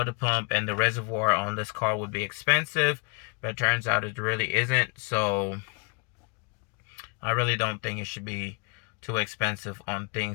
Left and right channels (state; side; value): quieter; right; 31.9 dB